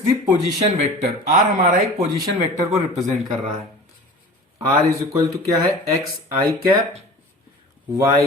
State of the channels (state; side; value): normal; both; correlation 0.39